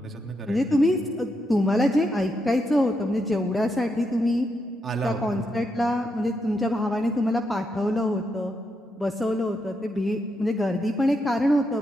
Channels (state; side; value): normal; both; correlation 0.82